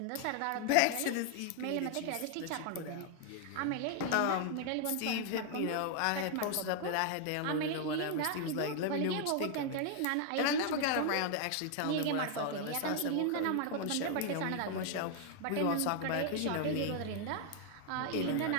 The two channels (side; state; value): both; different; correlation 0.00